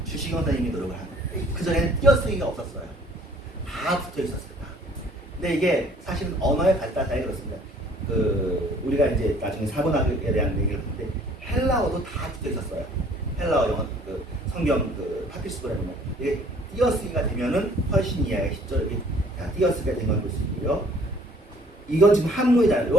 주시경 선생님이 노력을 한 거예요. 그전에는 띄어쓰기가 없었어요. 다 붙어 있었어요. 다. 근데 이게 사실은 언어의 발달 사이에 그렇습니다. 우리가 이제 나중에 사본학에 대한 얘기를 하는데 헬라어도 다 붙어 있었어요. 헬라어 영어 성경 파피스본에 보면 이게 띄어쓰기가 되면은 훨씬 이해하기 쉽죠. 이렇게 띄어쓰기가 된 걸 볼 수 있고요. 이건 지금 한문이잖아요.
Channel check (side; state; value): both; normal; correlation 0.56